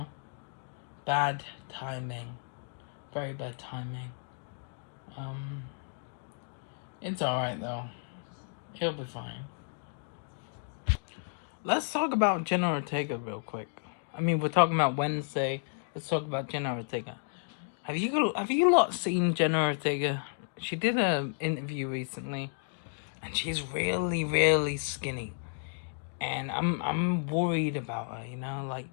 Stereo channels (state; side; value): silent; right; digital silence